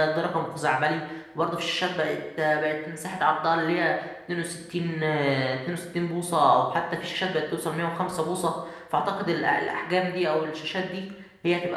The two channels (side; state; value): both; identical; correlation 1.00